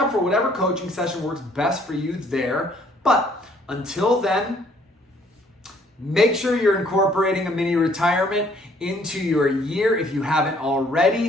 for whatever coaching session works best for you there. But until then, make sure you're incorporating a mini retirement into your year if you haven't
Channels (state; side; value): normal; both; correlation 0.62